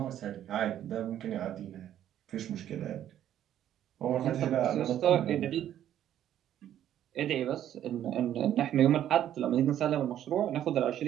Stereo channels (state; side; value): quieter; left; 11.1 dB